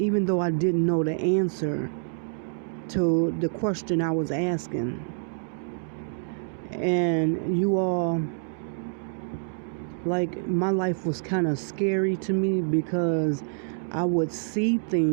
though I didn't know the answer to the question I was asking. And you all, like, my life was kind of scary to me because I would see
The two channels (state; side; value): silent; left; digital silence